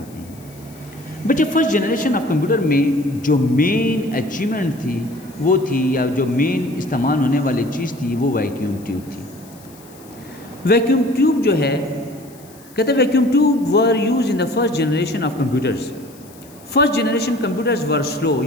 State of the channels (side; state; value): left; noise; hiss, 24 dB below the sound